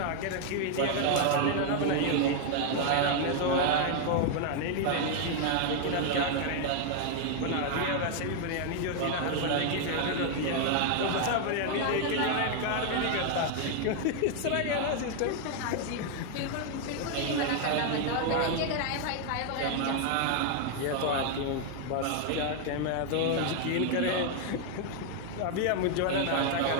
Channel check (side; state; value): both; different; correlation 0.00